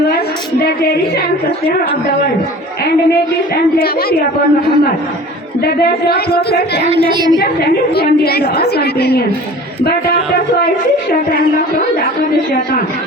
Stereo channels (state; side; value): normal; both; correlation 0.42